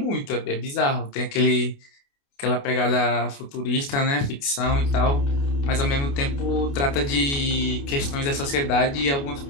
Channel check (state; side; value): late; right; 29 ms